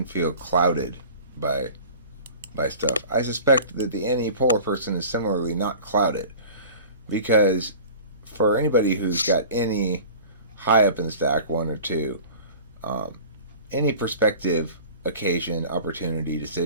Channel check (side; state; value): both; inverted; correlation -0.40